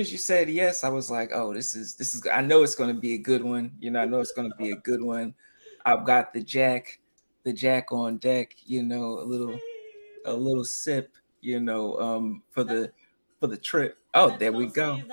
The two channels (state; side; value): inverted; both; correlation -1.00